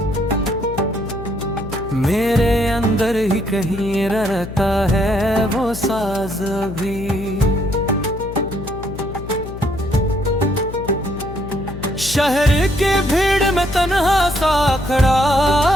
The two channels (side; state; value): left; noise; hum, 11 dB below the sound